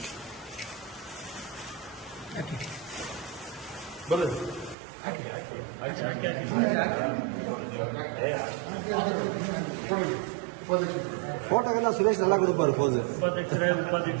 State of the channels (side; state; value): left; drops out; at 4.8 s